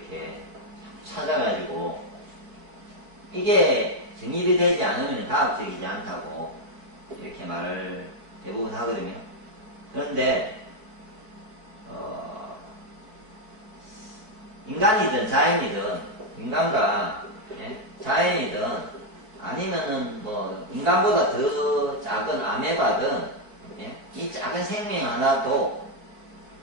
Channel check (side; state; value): left; late; 4.6 ms